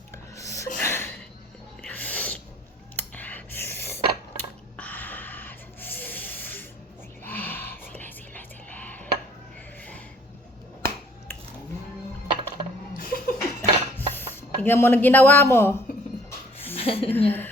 Tignan mo na ginawa mo.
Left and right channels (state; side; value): normal; both; correlation 0.57